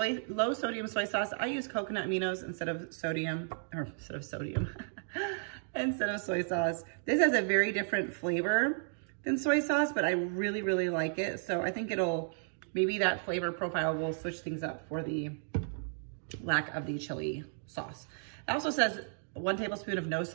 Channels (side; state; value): left; silent; digital silence